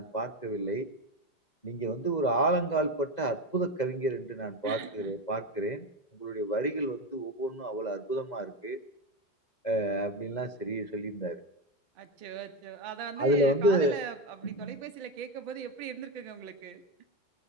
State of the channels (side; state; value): right; late; 2.0 ms